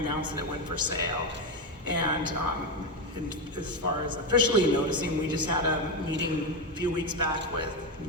that it went for sale. And as far as officially noticing, we just had a meeting a few weeks back with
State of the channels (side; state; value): both; normal; correlation 0.11